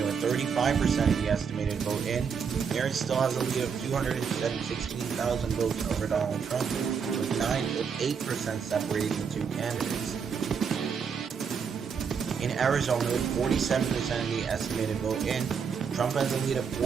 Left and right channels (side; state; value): left; quieter; 6.4 dB